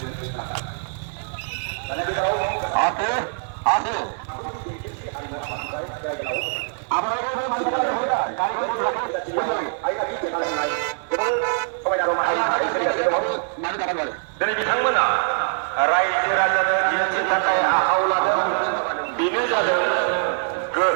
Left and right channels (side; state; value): left; silent; 63 dB below the other